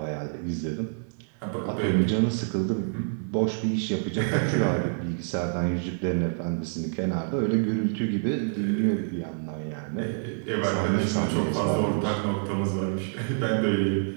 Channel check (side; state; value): left; silent; digital silence